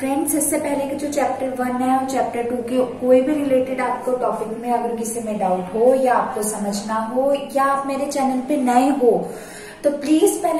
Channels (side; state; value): both; identical; correlation 1.00